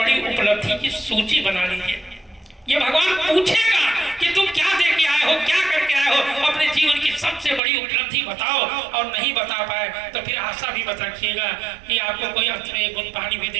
उपलब्धि की सूची बना लीजिए। ये भगवान पूछेगा कि तुम क्या दे के आए हो, क्या करके आए हो, अपने जीवन की सबसे बड़ी उपलब्धि बताओ। और नहीं बता पाए तो फिर आशा भी मत रखिएगा कि आपको कोई अंत में एक बूंद पानी भी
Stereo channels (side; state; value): left; drops out; at 7.6 s